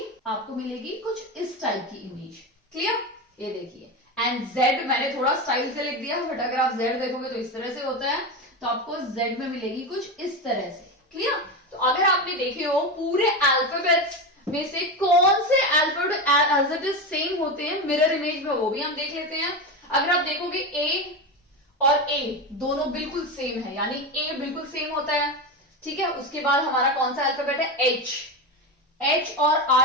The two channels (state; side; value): normal; both; correlation 0.18